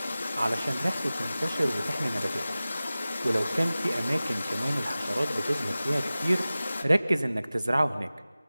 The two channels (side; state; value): both; inverted; correlation -0.97